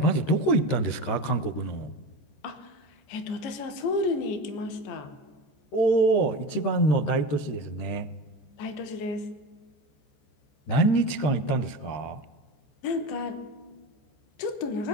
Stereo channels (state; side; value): late; right; 14 ms